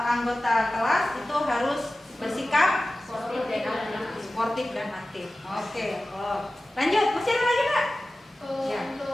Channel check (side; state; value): both; normal; correlation 0.96